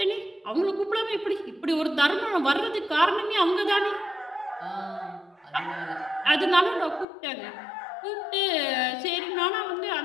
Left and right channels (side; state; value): right; drops out; at 7.1 s